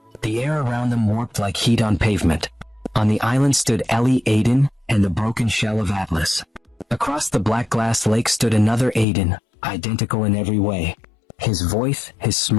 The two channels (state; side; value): drops out; right; at 9.1 s